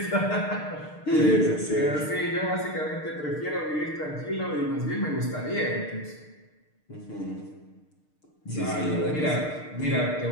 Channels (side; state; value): right; late; 6.6 ms